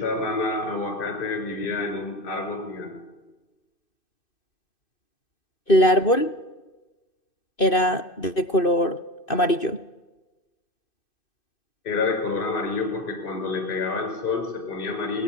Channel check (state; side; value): late; right; 2.6 ms